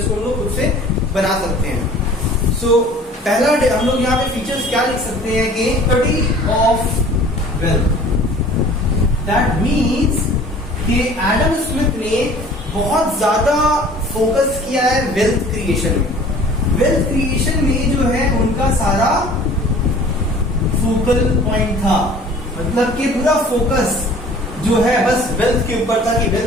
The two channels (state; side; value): normal; both; correlation 0.48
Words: को हम लोग खुद से बना सकते हैं। सो पहला हम लोग यहाँ पे फीचर्स क्या लिख सकते हैं कि study of wealth. That means कि एडम स्मिथ ने बहुत ज्यादा फोकस किया है वेल्थ क्रिएशन में। वेल्थ क्रिएशन में जो है उनका सारा फोकल पॉइंट था, मतलब कि पूरा फोकस जो है बस वेल्थ के ऊपर था कि